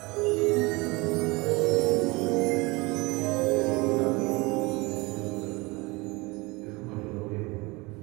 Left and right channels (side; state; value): left; quieter; 24.7 dB